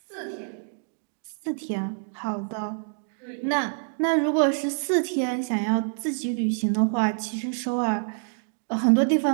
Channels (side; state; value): left; silent; digital silence